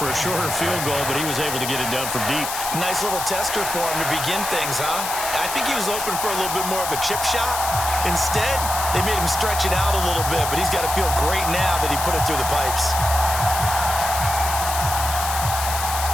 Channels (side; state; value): left; noise; hiss, 5 dB below the sound